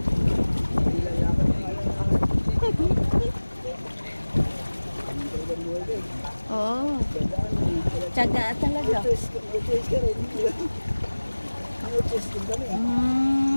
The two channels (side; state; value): both; inverted; correlation -1.00